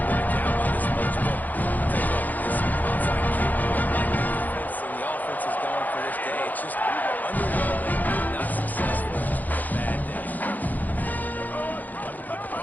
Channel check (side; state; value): right; late; 0.083 ms